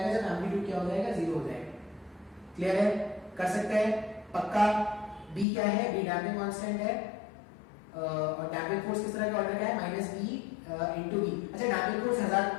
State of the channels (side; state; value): right; drops out; at 5.5 s